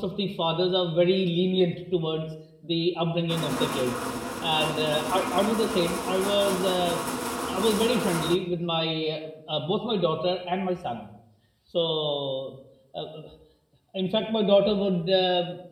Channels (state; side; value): identical; both; correlation 1.00